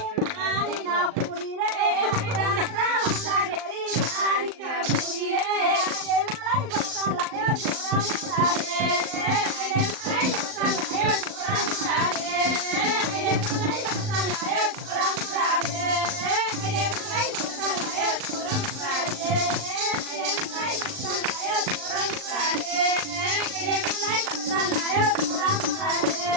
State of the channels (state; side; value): late; left; 39 ms